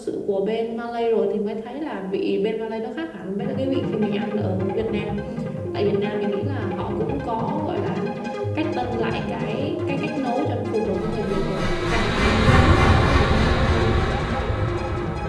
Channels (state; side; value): identical; both; correlation 1.00